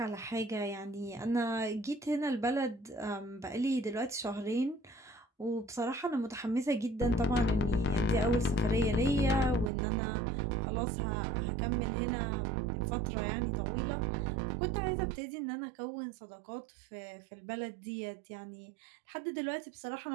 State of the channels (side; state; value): left; drops out; at 9.7 s